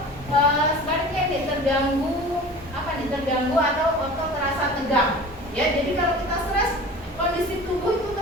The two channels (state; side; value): normal; both; correlation 0.39